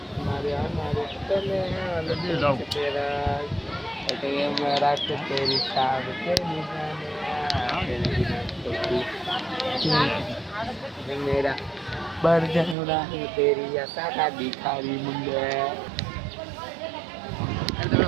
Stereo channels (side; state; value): left; drops out; at 12.8 s